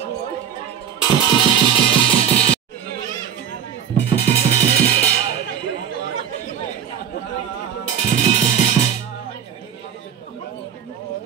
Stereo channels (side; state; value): left; quieter; 8.7 dB